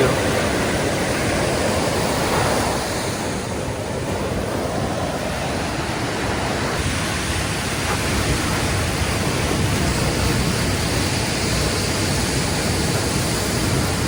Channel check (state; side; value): identical; both; correlation 1.00